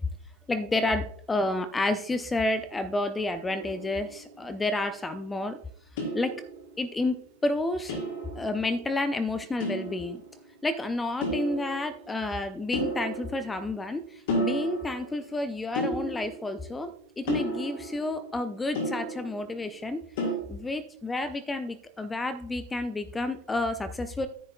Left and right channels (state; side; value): normal; both; correlation 0.64